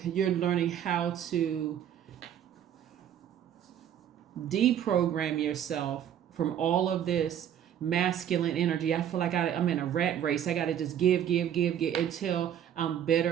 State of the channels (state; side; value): quieter; left; 9.8 dB